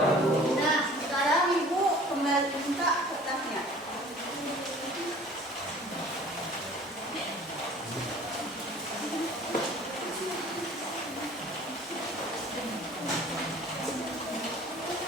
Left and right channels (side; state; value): both; normal; correlation 0.48